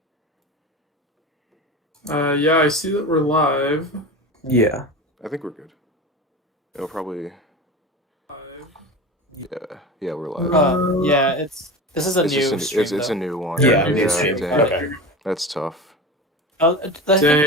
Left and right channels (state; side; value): normal; both; correlation 0.29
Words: Yeah, I see that we're live. Yeah. I think we're good. It'll probably. Yeah, we're live. Yeah, this is a It's just new stream. it's a new one. Yeah, new stream. Dang. Okay. That's tough. I think let's